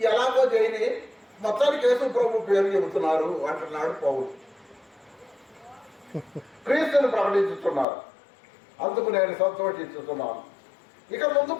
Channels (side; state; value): right; drops out; at 7.9 s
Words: ఎలాగో చేయని, మొత్తానికి యేసు ప్రభు పేరు చెబుతున్నారు అంటున్నాడు పౌలు. క్రీస్తుని ప్రకటించుతున్నారు. అందుకు నేను సంతోషిస్తున్నాను. ఇక